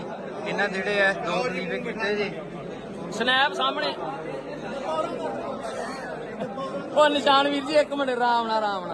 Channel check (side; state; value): both; identical; correlation 1.00